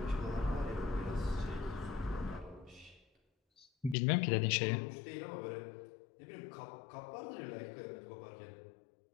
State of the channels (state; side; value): drops out; right; at 4.0 s